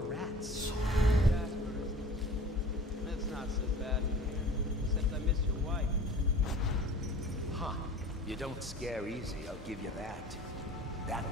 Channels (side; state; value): both; normal; correlation 0.42